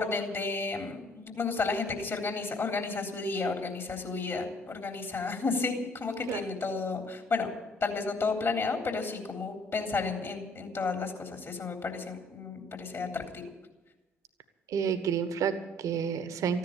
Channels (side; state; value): both; normal; correlation 0.59